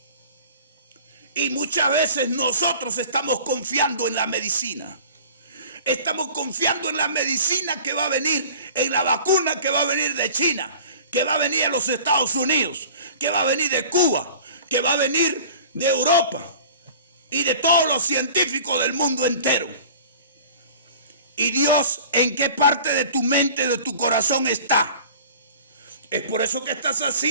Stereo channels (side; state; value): both; inverted; correlation -0.44